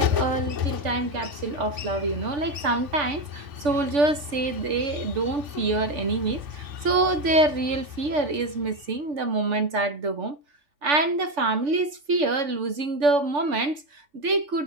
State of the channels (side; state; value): left; late; 3.5 ms